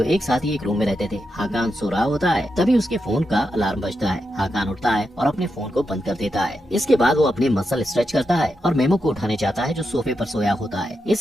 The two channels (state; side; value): normal; both; correlation 0.86